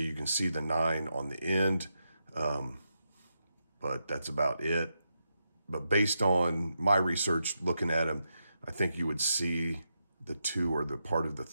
you can see the 9 on the end, but that's about it. But based on my research, looking at them, I think you would see the 2 or the part of the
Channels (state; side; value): inverted; both; correlation -0.85